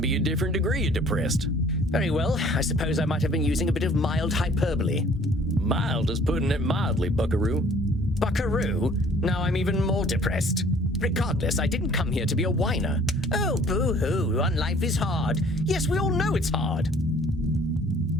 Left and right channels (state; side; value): normal; both; correlation 0.54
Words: be a different degree of depressed? Very well, I suppose I might have been using a bit of mild hyperbole. Mild is putting it mildly, buckaroo. Buckaroo? Now I'm even more depressed. Regardless, I didn't come here to be a whiner. Oh, boo-hoo, on life is hard. Yes, we all know it's hard.